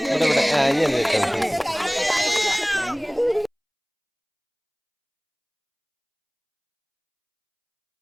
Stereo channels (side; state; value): both; identical; correlation 1.00